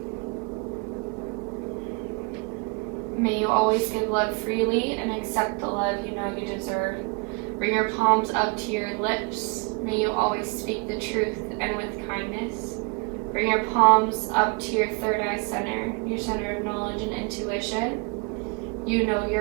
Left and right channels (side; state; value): left; quieter; 31.3 dB